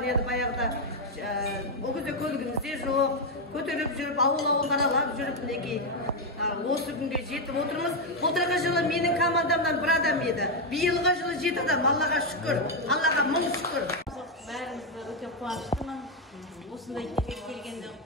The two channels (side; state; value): both; normal; correlation 0.03